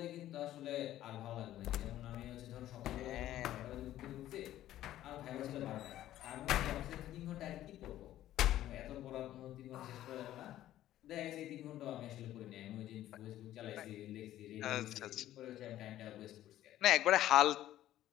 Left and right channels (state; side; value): quieter; right; 13.4 dB